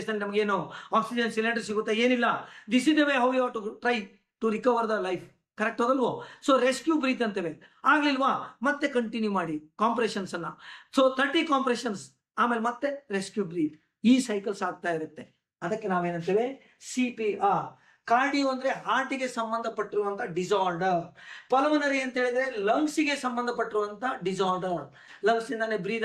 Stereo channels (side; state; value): both; identical; correlation 1.00